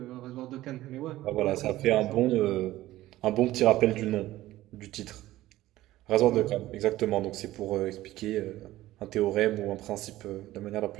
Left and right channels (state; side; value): quieter; left; 15.8 dB